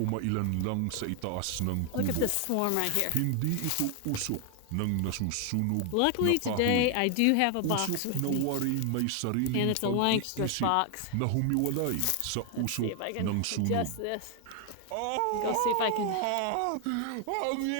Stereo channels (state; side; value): different; both; correlation 0.00